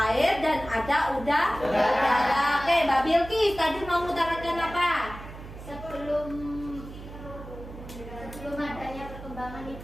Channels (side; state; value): right; noise; hum, 14 dB below the sound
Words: air, dan ada udara. Oke, Mbak Bilkis tadi mau mengutarakan apa? Sebelum adanya perkembangan